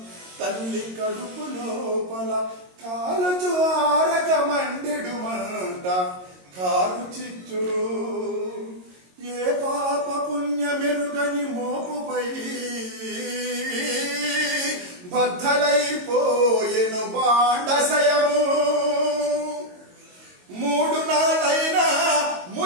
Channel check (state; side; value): late; left; 22 ms